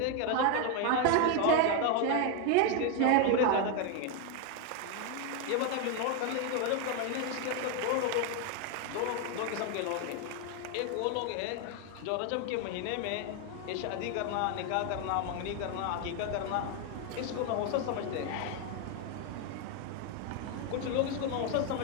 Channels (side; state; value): both; different; correlation 0.01